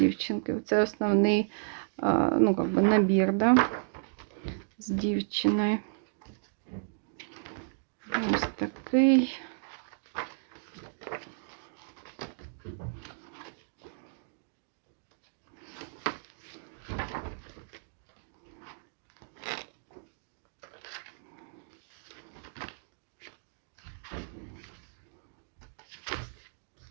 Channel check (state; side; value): silent; left; digital silence